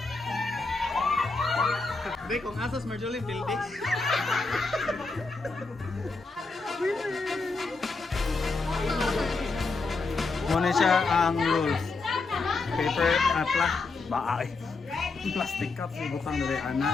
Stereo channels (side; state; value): right; quieter; 3.9 dB